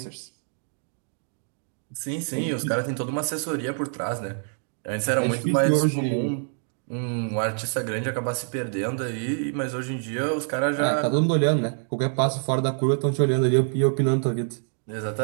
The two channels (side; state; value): left; silent; 59 dB below the other